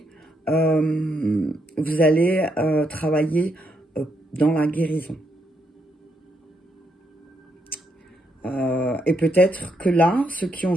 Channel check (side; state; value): both; normal; correlation 0.77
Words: vous allez travailler dans la guérison. Et peut-être que là, ceux qui ont